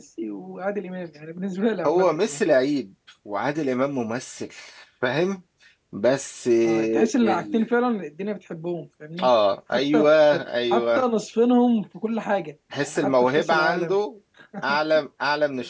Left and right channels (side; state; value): both; identical; correlation 1.00